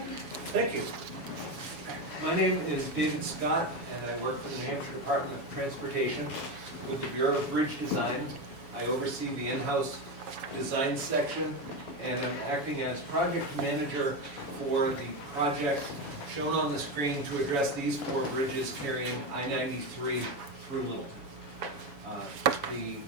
Thank you. My name is David Scott, and I work for the New Hampshire Department of Transportation with the Bureau of Bridge Design. I oversee the in-house design section, and I'm acting as project manager for the project shown on the screen to address these 4 bridges carrying I-93 through Littleton. The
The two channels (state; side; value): late; left; 7.1 ms